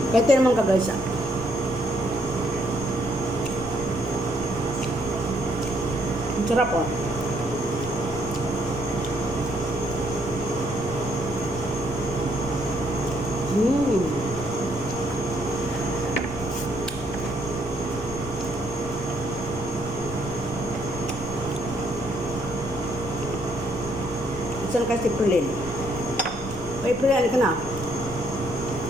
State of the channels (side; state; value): left; noise; rumble, 13 dB below the sound